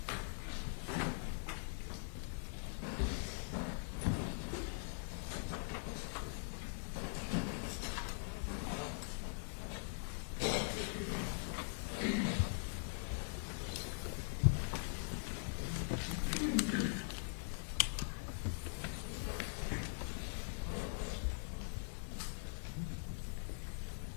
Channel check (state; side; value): silent; right; digital silence